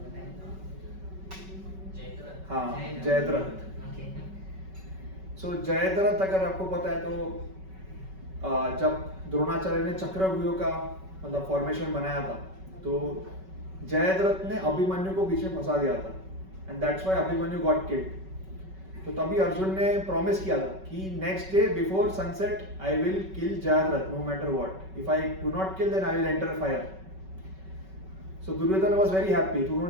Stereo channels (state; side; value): late; left; 5.3 ms